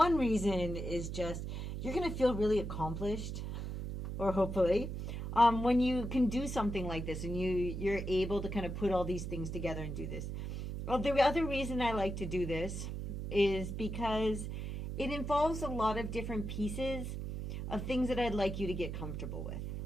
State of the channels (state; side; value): noise; right; hum, 5 dB below the sound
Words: reason is just you're going to feel really accomplished, or hopefully, when you can do something like this and you're able to kind of put all these things together and do this. Well, the other reason I like to do this is because it involves a lot of different pieces of things that I'd like you to get comfortable with.